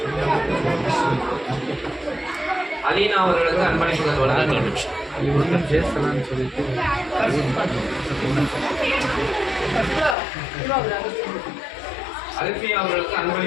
அலீனா அவர்களுக்கு அன்பளிப்புகள் வழங்கப்படுகிறது. அல்ஃபியா அவர்களுக்கு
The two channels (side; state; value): right; drops out; at 10.2 s